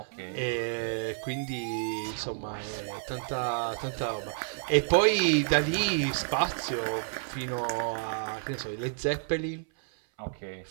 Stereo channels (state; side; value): silent; left; 58 dB below the other